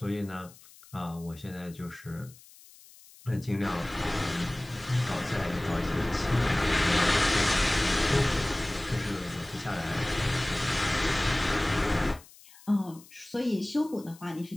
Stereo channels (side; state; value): left; noise; hiss, 23 dB below the sound